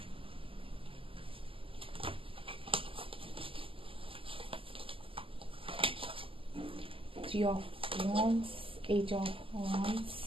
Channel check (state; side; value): late; left; 0.26 ms